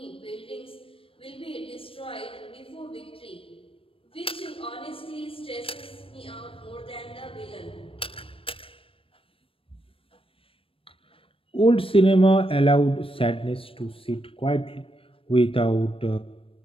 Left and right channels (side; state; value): right; late; 0.26 ms